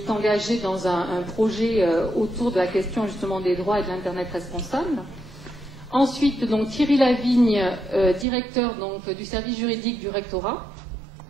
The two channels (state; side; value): drops out; left; at 8.2 s